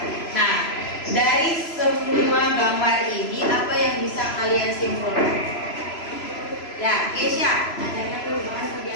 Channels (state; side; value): late; right; 3.0 ms